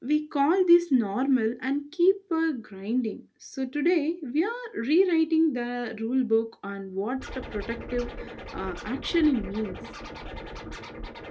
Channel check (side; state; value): both; identical; correlation 1.00